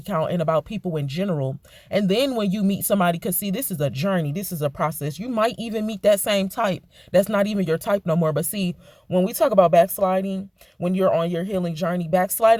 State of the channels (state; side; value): identical; both; correlation 1.00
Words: count and about people in general. And then when you meet somebody, because see, this is a journey, this is a process. You might even meet that same type that's not even your type no more. But see, when we talk about backsliding, when you're on your healing journey,